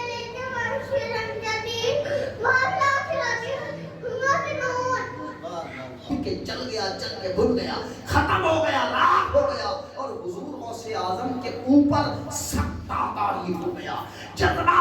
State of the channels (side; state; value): both; identical; correlation 1.00